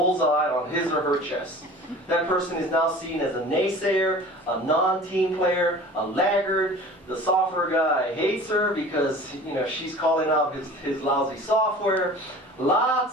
on his or her chest. That person is now seen as a naysayer, a non-team player, a laggard. The software guy hates her because she's calling out his lousy software.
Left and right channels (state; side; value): normal; both; correlation 0.42